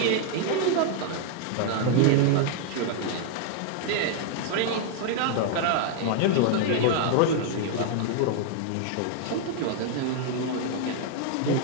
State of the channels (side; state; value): both; different; correlation 0.00